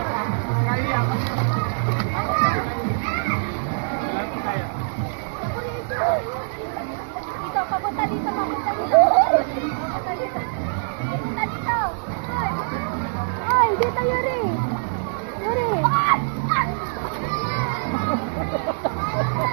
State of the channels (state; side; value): silent; left; digital silence